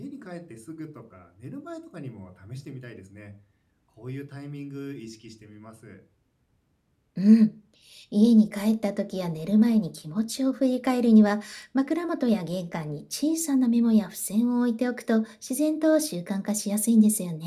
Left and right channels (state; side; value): identical; both; correlation 1.00